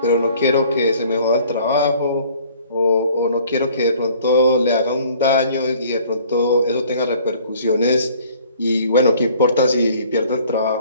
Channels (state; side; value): inverted; both; correlation -0.55